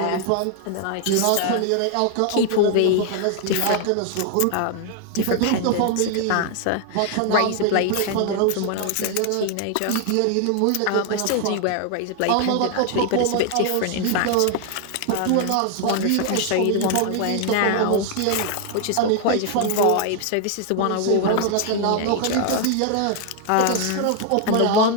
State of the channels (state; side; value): different; both; correlation 0.00